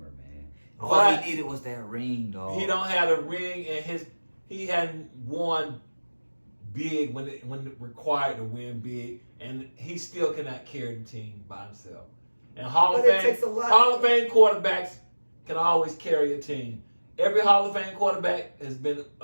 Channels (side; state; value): both; inverted; correlation -1.00